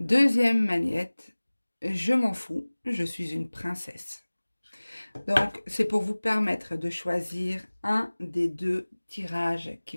magnette, je m'en fous, je suis une princesse. Donc, c'est pour vous permettre de choisir un des deux tirages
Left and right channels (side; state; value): both; inverted; correlation -1.00